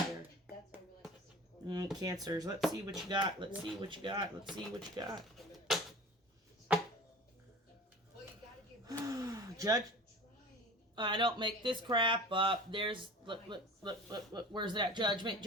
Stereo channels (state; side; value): normal; both; correlation 0.38